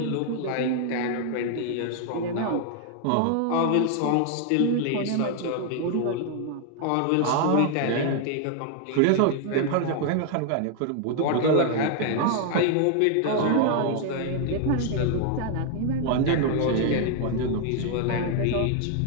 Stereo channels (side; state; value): both; different; correlation 0.00